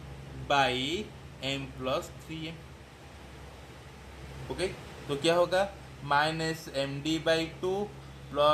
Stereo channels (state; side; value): identical; both; correlation 1.00